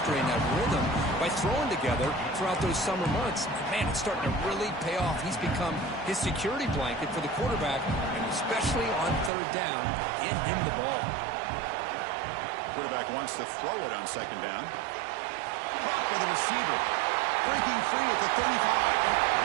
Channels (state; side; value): drops out; left; at 9.3 s